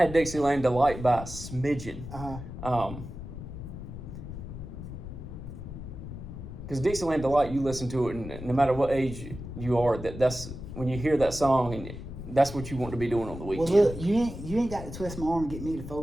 Dixieland Delight by a smidgen. Because Dixieland Delight, you listen to it, and no matter what age you are, that's when you hear that song, and that's what you want to be doing on the weekend. Well, look, you ain't got to twist my arm and get me to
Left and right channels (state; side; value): noise; left; rumble, 10 dB below the sound